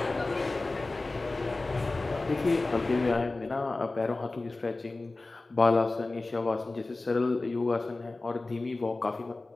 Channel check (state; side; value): quieter; right; 3.2 dB